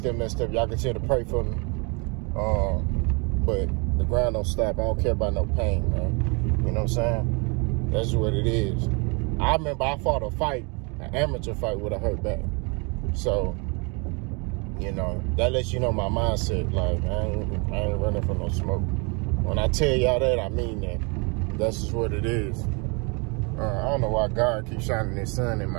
messed up. Y'all continue to pray for me. But the grind don't stop. I don't care about no pain, man. You know what I'm saying? That's what it is. I remember I fought a fight, an amateur fight with a hurt back. So, you know, that lets you know my mindset. Like, I ain't running for no smoke. When I tell y'all that, I mean that. That's just what it is. I don't know why God keeps shining his sun in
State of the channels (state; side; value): quieter; left; 32.1 dB